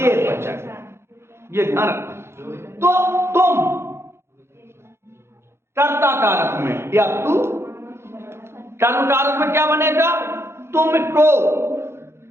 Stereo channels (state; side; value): late; left; 0.12 ms